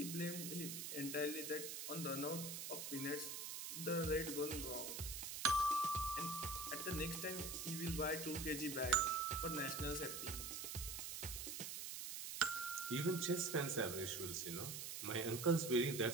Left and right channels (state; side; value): noise; right; hiss, 5 dB below the sound